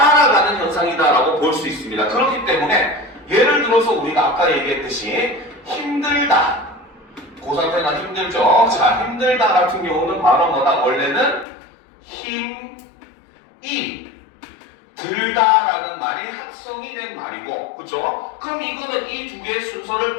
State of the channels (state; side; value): drops out; right; at 11.5 s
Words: 현상이다라고 볼 수 있습니다. 그렇기 때문에 예를 들어서 우리가 아까 얘기했듯이 힘들다. 고3 때나 힘들죠? 자, 힘들다 같은 경우는 바로 뭐다? 원래는 힘이 들다라는 말이 합성이 된 말이고, 그쵸? 그럼 이거는 이 두 개의 순서를